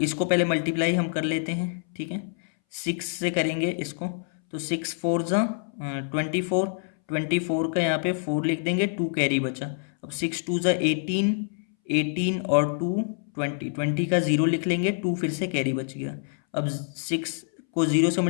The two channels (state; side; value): silent; right; 61 dB below the other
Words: पहले मल्टीप्लाई हम कर लेते हैं, ठीक है। 6 से करेंगे इसको, तो 6 4 ज़ा 24, 24 का यहाँ पे 4 लिख देंगे, 2 कैरी बचा। अब 6 2 ज़ा 18, 18 और 2 20, 20 का 0 लिख लेंगे, 2 फिर से कैरी बच गया। अब 6 को 0 से